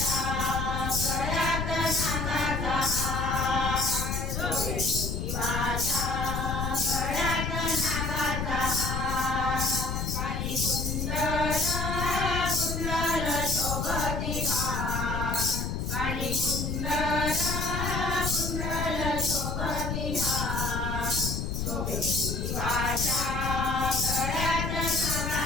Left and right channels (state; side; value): noise; left; rumble, 2 dB below the sound